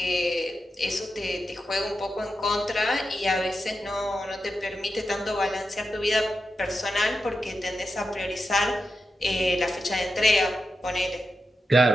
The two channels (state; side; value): normal; both; correlation 0.89